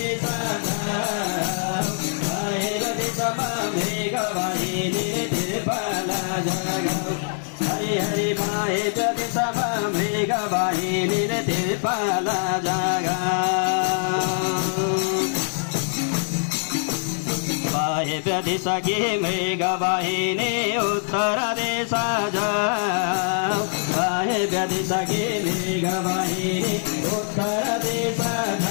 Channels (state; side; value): silent; right; 63 dB below the other